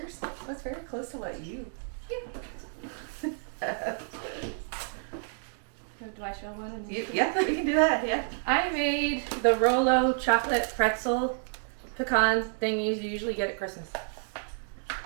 That's very close to what you. Do I show one? Yeah, we can do that. Yeah. I made the Rolo chocolate pretzel pecan thing you usually get at Christmas.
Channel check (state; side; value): silent; left; 58 dB below the other